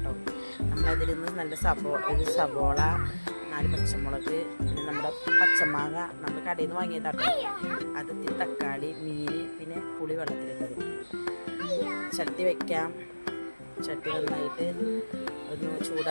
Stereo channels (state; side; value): inverted; both; correlation -1.00